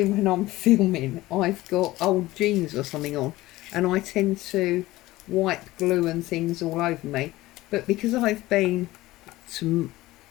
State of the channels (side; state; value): right; quieter; 17.9 dB